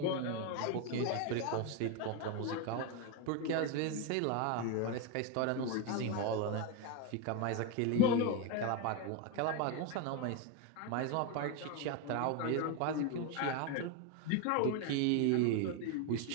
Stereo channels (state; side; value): different; both; correlation 0.02